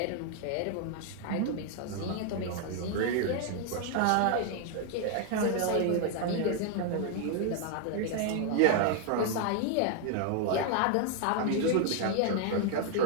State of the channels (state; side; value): different; both; correlation 0.00